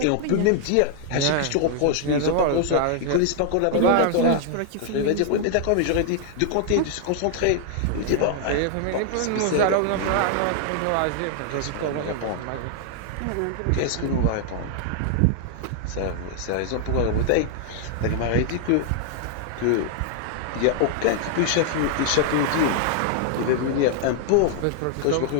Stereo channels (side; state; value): both; different; correlation 0.00